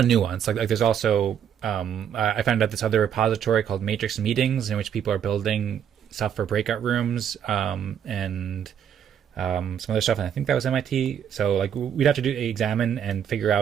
of nuance. Like there's also I found out this other repository called Matrix Meetings, in which people are building stuff for breakout rooms and some other stuff, and I think that was MIT. So like we'd have to examine and figure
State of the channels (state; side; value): quieter; left; 8.8 dB